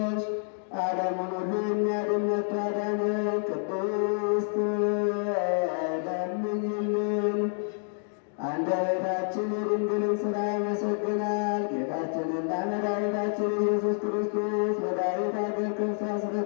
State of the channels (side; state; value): right; silent; 59 dB below the other